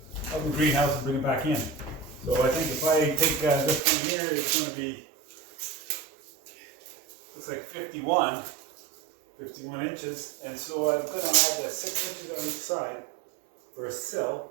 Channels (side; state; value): left; drops out; at 3.8 s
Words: greenhouse and bring it back in. So I think if I take this one here, it's going to be, looks like 51 inches, and so I'm going to add 6 inches on each side for a